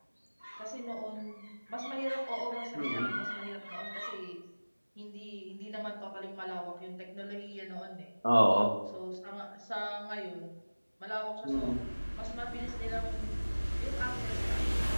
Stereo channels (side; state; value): both; inverted; correlation -1.00